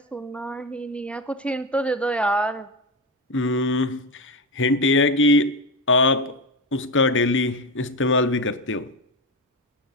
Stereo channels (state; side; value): normal; both; correlation 0.16